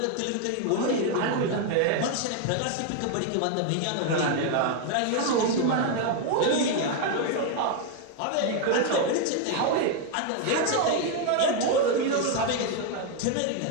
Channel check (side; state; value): both; different; correlation 0.01